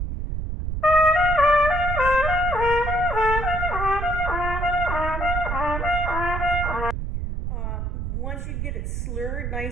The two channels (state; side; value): noise; right; rumble, 3 dB below the sound